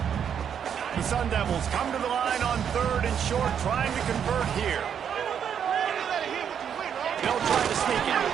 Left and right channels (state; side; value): quieter; left; 8.2 dB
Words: The Sun Devils come to the line on 3rd and short, trying to convert here. They'll try to sneak it.